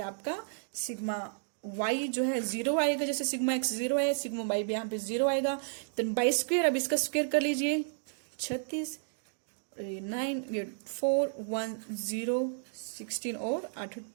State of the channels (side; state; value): left; silent; digital silence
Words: आपका सिग्मा वाई जो है 0 आएगा, जैसे सिग्मा एक्स 0 है, सिग्मा वाई भी यहाँ पे 0 आएगा। देन बाई स्क्वायर, अब इसका स्क्वायर कर लीजिए, 36 9 ये 4 1 0 16 और 8